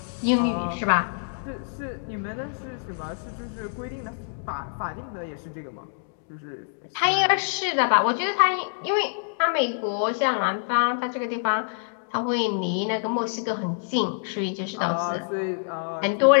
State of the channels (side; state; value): right; silent; digital silence